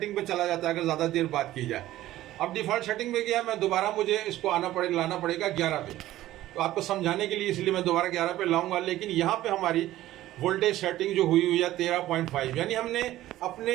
पे चला जाता है अगर ज्यादा देर बात की जाए, अब डिफॉल्ट सेटिंग पे गया मैं, दोबारा मुझे इसको लाना पड़ेगा 11 पे। तो आपको समझाने के लिए इसलिए मैं दोबारा 11 पे लाऊंगा। लेकिन यहाँ पे हमारी वोल्टेज सेटिंग जो हुई है 13.5, यानी हमने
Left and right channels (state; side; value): quieter; left; 14.8 dB